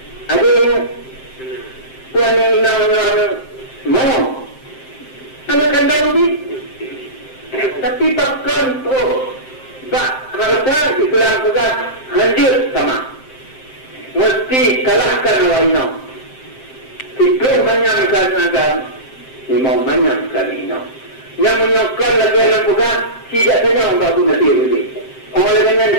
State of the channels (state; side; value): late; right; 7.6 ms